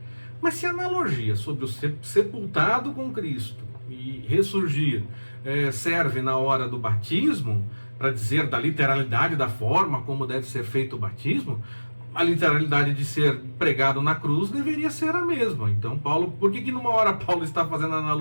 Mas se a analogia sobre o sepultado com Cristo e ressurgir serve na hora do batismo, para dizer da literalidade da forma como deve ser feito o batismo, a literalidade de ser pregado na cruz deveria ser a mesma. Então, Paulo, por que numa hora Paulo está fazendo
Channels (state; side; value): inverted; both; correlation -1.00